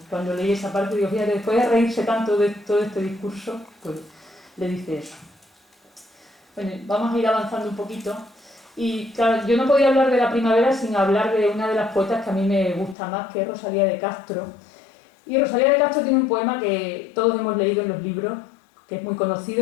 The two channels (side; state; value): right; drops out; at 13.0 s